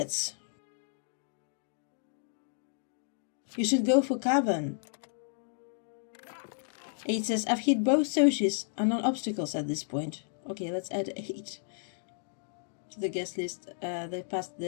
You should go for cavern. 8 says, I've hit both socials and non-obstacles at this point. Okay, let's add 8 to the guest list. They passed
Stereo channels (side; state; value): right; silent; digital silence